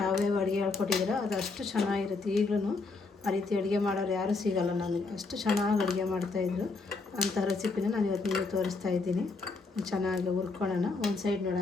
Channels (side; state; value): right; quieter; 3.9 dB